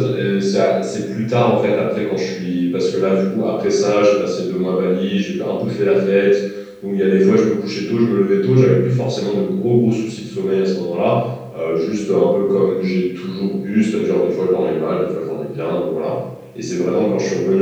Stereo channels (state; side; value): identical; both; correlation 1.00